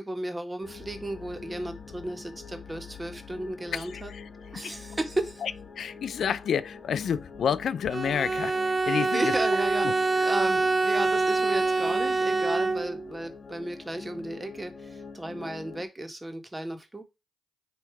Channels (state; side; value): normal; both; correlation 0.88